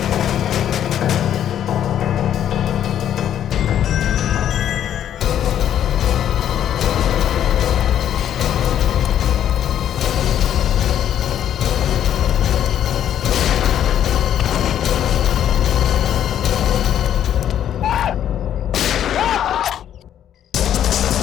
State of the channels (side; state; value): right; quieter; 10.3 dB